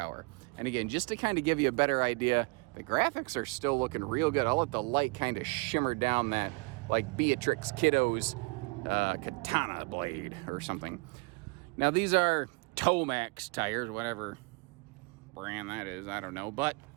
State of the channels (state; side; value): quieter; left; 29.7 dB